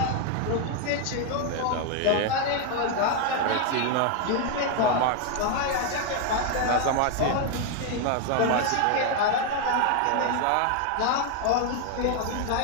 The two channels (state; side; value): different; both; correlation 0.01